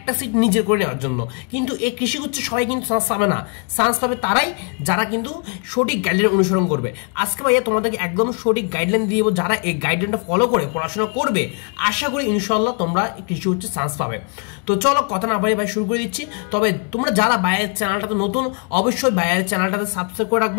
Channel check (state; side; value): quieter; right; 39.6 dB